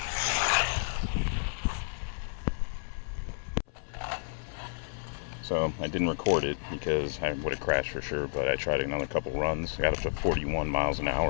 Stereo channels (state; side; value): silent; right; 57 dB below the other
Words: So I didn't record it because I would have crashed for sure, but I tried another couple runs. I got up to 41 miles an